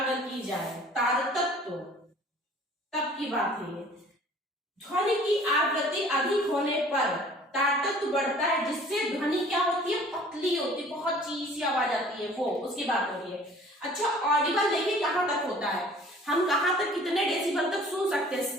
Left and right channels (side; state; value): both; normal; correlation 0.51